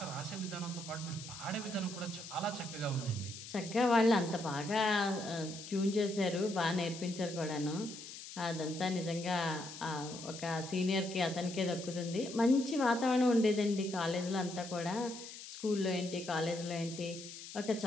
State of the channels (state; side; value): noise; left; hiss, 12 dB below the sound